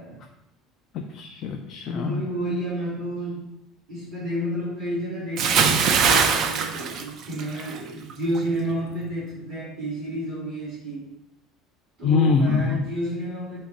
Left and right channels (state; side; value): normal; both; correlation 0.37